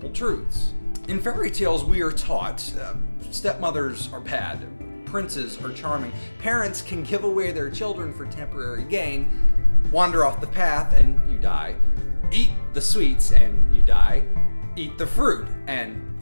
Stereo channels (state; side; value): inverted; both; correlation -1.00